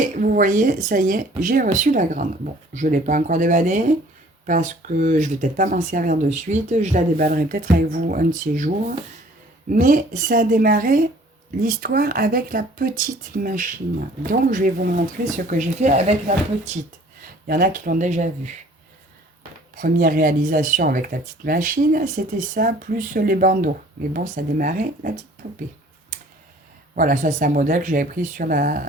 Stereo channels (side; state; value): both; normal; correlation 0.53